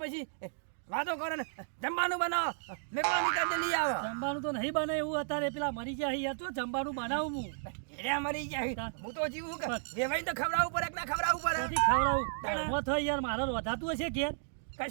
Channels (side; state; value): left; silent; digital silence